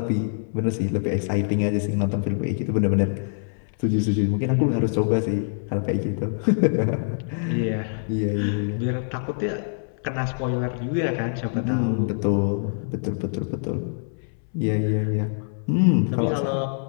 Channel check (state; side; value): silent; right; 62 dB below the other